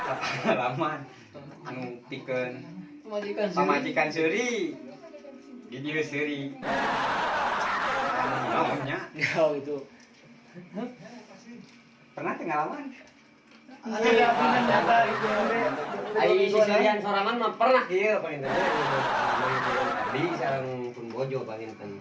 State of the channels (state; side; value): identical; both; correlation 1.00